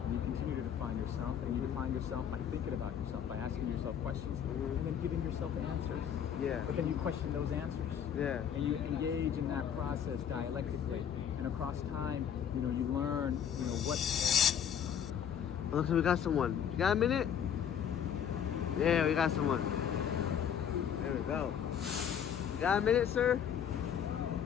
and you continue to define yourself, and you define yourself by thinking about yourself, by asking yourself questions, and then giving yourself answers. Yeah. But then you question those answers. Yeah. And you engage in that process dialectically, and across time, you learn, what. Oh, look, we got someone. You got a minute? Yeah, we got someone. There we go. You got a minute, sir?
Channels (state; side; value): quieter; right; 8.6 dB